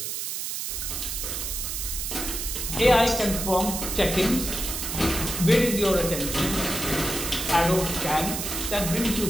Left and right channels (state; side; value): noise; right; hiss, 4 dB below the sound